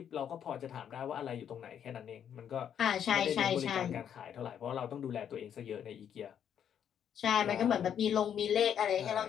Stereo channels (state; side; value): quieter; right; 8.9 dB